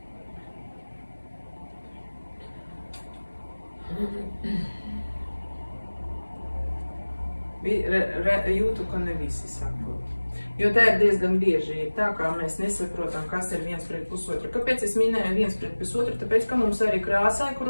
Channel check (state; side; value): inverted; both; correlation -1.00